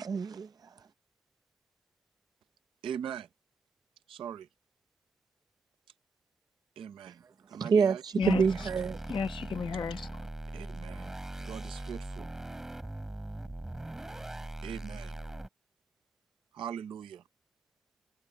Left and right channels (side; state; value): left; quieter; 3.5 dB